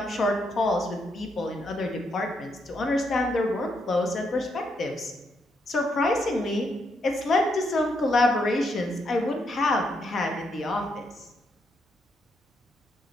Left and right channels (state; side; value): normal; both; correlation 0.78